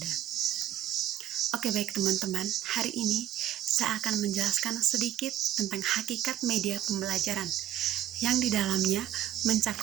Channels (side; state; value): left; quieter; 12.2 dB